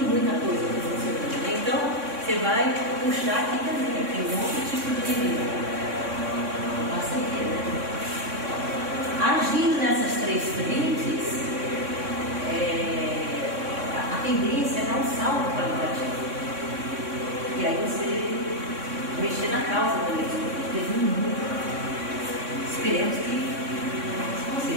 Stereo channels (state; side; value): late; left; 3.6 ms